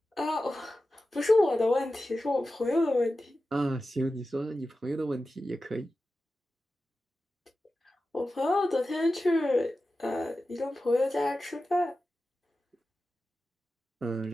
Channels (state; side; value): normal; both; correlation 0.93